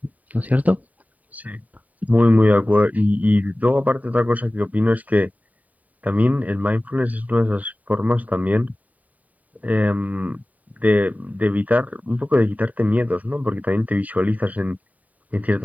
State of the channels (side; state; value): left; late; 0.073 ms